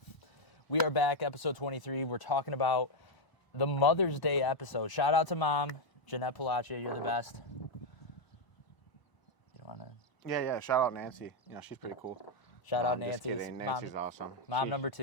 We are back, episode 23. We're talking about the Mother's Day episode. Shout out to Mom, Jeanette Pollaccia. You're the best. You want to? Yeah. Shout out Nancy. You know, she's pretty cool. Shout out Just Nancy. kidding. Nancy's awesome. Mom number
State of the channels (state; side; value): late; right; 1.0 ms